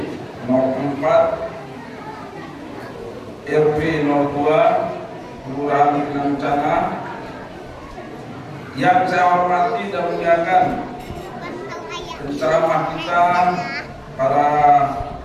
Nomor 4 RW 02 Kelurahan Inangutana, yang saya hormati dan muliakan penceramah kita pada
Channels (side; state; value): both; identical; correlation 1.00